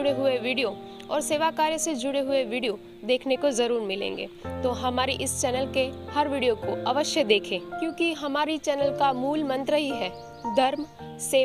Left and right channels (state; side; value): identical; both; correlation 1.00